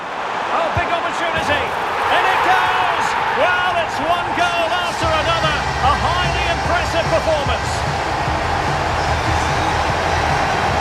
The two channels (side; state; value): both; identical; correlation 1.00